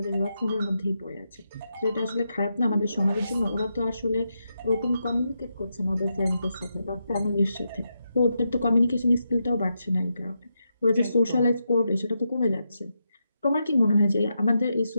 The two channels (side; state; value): both; inverted; correlation -0.85